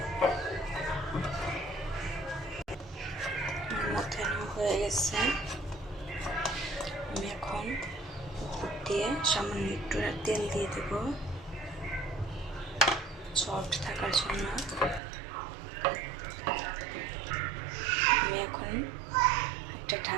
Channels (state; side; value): drops out; left; at 15.0 s